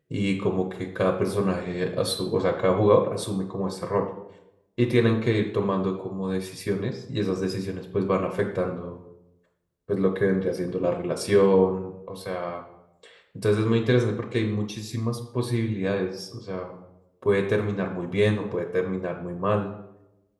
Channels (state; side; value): identical; both; correlation 1.00